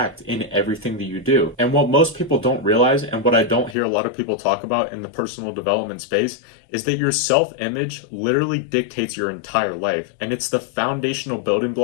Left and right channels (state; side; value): drops out; right; at 3.8 s